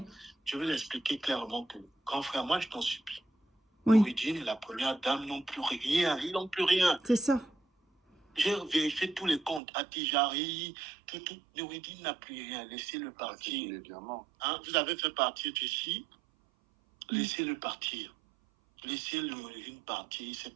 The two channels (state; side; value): drops out; left; at 9.6 s